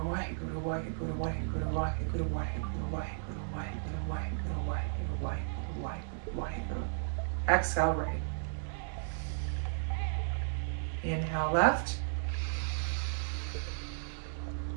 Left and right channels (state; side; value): silent; left; digital silence